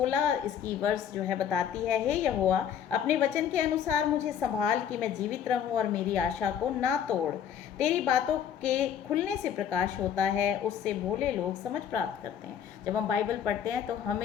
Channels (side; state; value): right; quieter; 8.7 dB